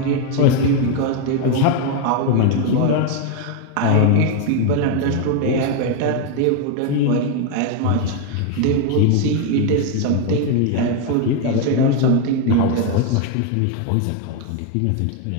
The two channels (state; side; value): different; both; correlation 0.01